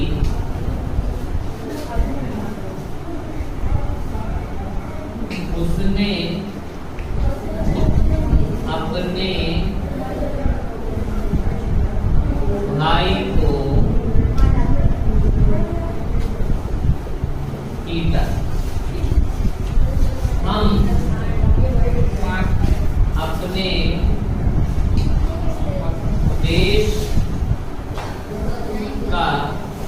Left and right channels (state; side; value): identical; both; correlation 1.00